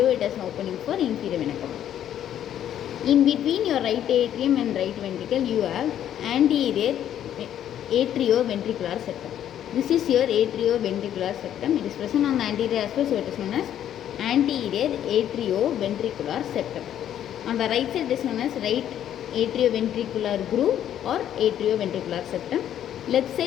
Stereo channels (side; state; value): right; quieter; 10.6 dB